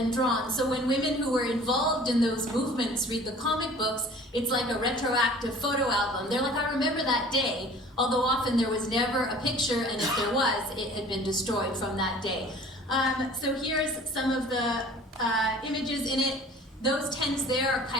drawn. So when women who were involved in those movements read the comic books, it's like a retroactive photo album. They're like, I remember that day, although often there was never a picture, and if there was, it had been destroyed from that day. So here's some of the images in it. Those tents there are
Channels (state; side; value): normal; both; correlation 0.47